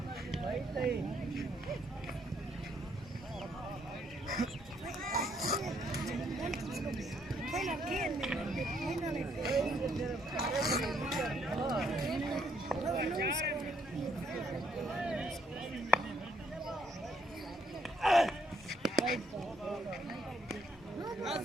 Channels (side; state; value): both; normal; correlation 0.70